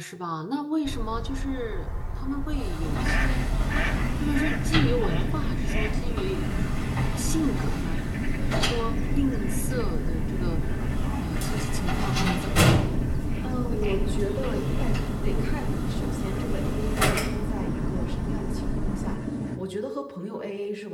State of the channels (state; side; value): identical; both; correlation 1.00